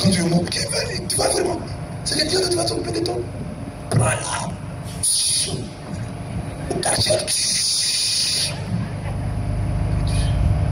tu es mort, tu vas vraiment. C'est le Dieu que tu vas s'occuper de toi. Prends-la. Au quartier.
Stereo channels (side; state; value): both; identical; correlation 1.00